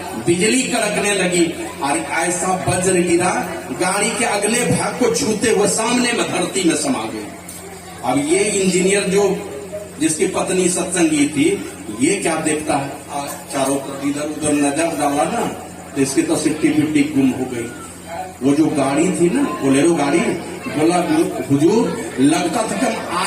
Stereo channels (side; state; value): both; identical; correlation 1.00